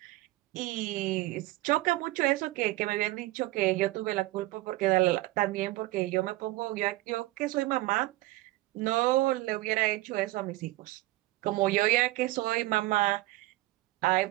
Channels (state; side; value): quieter; left; 19.0 dB